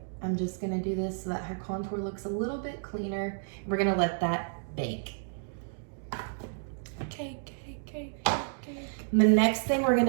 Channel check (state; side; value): silent; left; digital silence